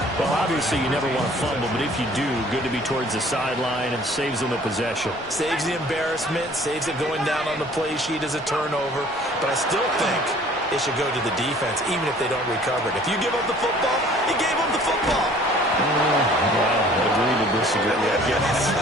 Well, obviously, you never want to fumble, but if you do, good to be towards the sideline and saves them the possession. Saves the embarrassment, saves it going down on the play sheet as a turnover. But I still think it should go to the defense, even if they don't recover it. If you give up the football, you gave up the football. Well, agree to disagree, I guess.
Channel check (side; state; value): both; normal; correlation 0.53